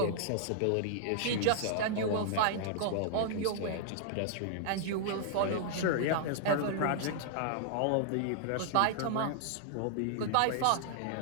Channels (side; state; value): both; different; correlation -0.01